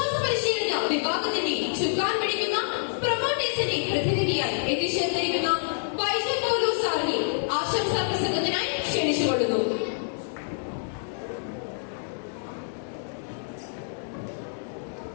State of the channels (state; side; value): silent; right; digital silence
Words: അച്ഛനെ പ്രതിനിധിയായി എത്തിച്ചേർന്നിരിക്കുന്ന വൈദ്യൻ പൗലോസ് സാറിനെ ആശംസാ പ്രസംഗത്തിനായി ക്ഷണിച്ചുകൊള്ളുന്നു.